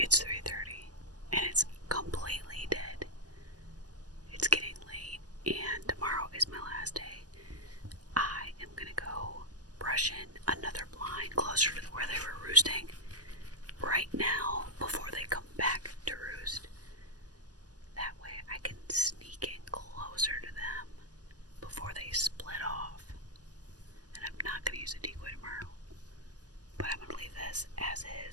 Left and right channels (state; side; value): late; left; 0.68 ms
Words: 3:30 and it's completely dead. It's getting late and tomorrow is my last day. I am gonna go brush in another blind closer to where they were roosting right now before they come back to roost. That way I can sneak in closer to them before they split off. And I'm not gonna use a decoy tomorrow, but I'm gonna leave this as